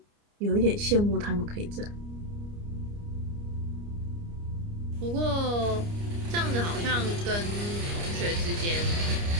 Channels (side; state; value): left; late; 29 ms